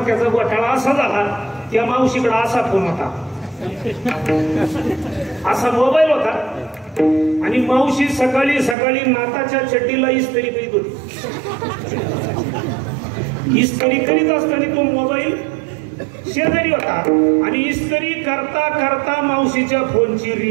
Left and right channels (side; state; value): left; drops out; at 8.8 s